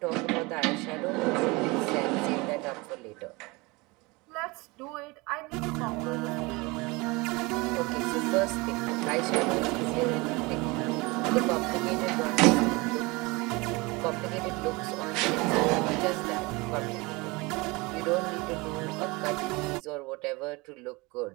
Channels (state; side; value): quieter; left; 24.8 dB